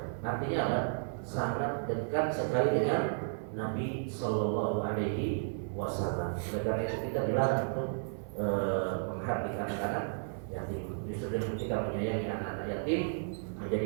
Artinya apa? Sangat dekat sekali dengan Nabi Shallallahu Alaihi Wasallam. Oleh karena itu kita dilarang untuk menghardik anak-anak yatim. Justru dengan kita menyayangi anak-anak yatim,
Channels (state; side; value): silent; left; 56 dB below the other